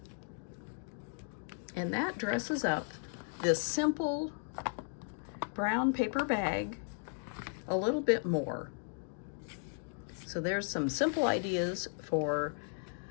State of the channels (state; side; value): silent; right; 54 dB below the other